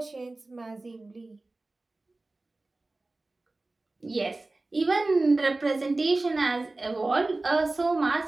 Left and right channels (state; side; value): quieter; left; 3.1 dB